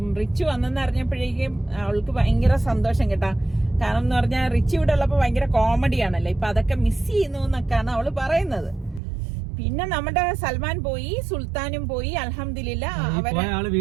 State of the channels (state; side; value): drops out; left; at 9.0 s